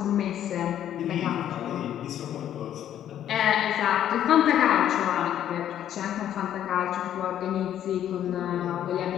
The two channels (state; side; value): quieter; right; 10.8 dB